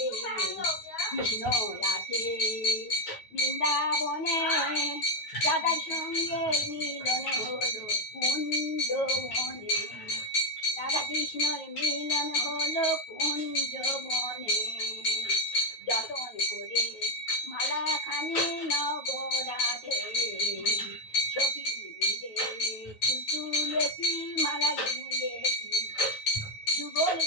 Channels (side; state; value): right; late; 9.4 ms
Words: কৃষ্ণ আছে বৃন্দাবনে রাধার সঙ্গে মিলন হলো কুঞ্জবনে রাধা কৃষ্ণর মিলন হলো কুঞ্জবনে যতন করে মালাখানি নগরাধে সখী মিলে ফুল তুলেছি মালা গেঁথেছি